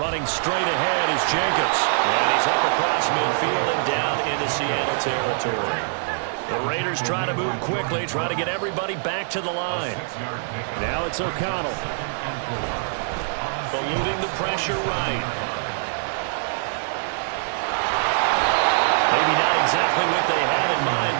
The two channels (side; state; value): left; silent; digital silence